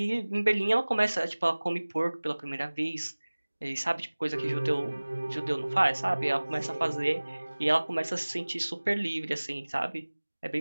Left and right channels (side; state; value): both; inverted; correlation -1.00